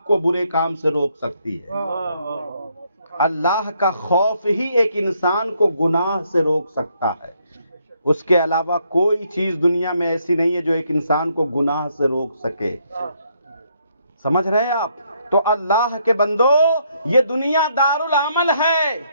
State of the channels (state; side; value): inverted; both; correlation -0.72